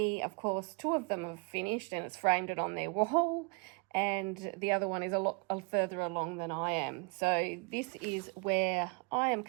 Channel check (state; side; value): quieter; left; 33.8 dB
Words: Of course, 2 of them have finished and it's framed it on their wall, and the other one is a lot further along than I am. So this is where I am